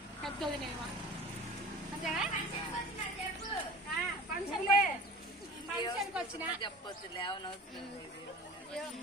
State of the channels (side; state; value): both; normal; correlation 0.40